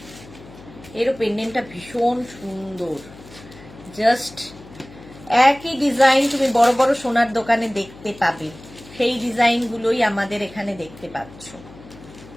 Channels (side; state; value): left; noise; hum, 19 dB below the sound